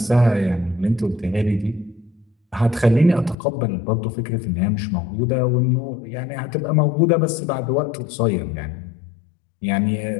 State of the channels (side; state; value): right; drops out; at 3.4 s